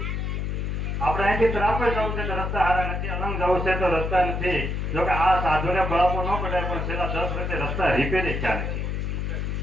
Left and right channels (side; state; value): left; noise; hum, 2 dB below the sound